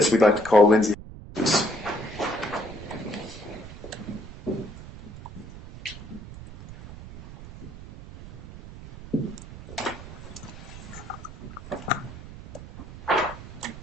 we'd like to call Lindsay, please.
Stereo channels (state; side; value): noise; right; rumble, 14 dB below the sound